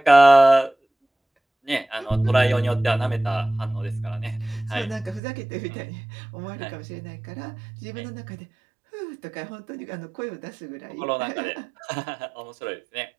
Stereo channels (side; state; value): left; drops out; at 5.2 s